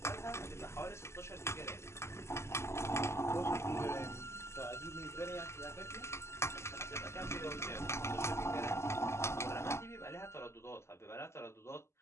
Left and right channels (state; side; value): late; right; 0.13 ms